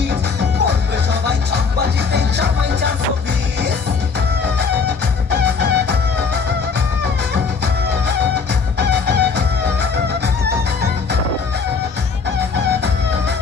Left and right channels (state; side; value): quieter; right; 5.3 dB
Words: বলবে সবাই ছকবাজিতে জামাই 420।